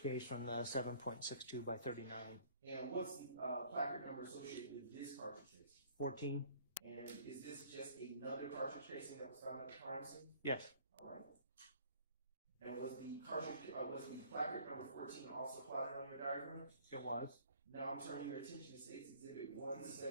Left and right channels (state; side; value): inverted; both; correlation -0.54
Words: case from the 7.62 by 39. And what's the placard number associated with this cartridge casing? 14. And is this just another cartridge casing that was found at the crime scene? Yes. All right. And was the placard number 14 also plotted on your diagram? It was. Now I'm turning your attention to State's Exhibit